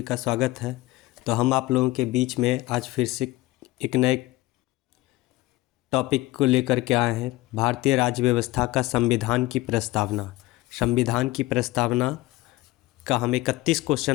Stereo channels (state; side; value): quieter; right; 18.5 dB